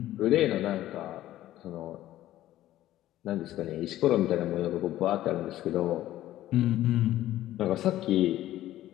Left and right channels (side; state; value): right; quieter; 14.1 dB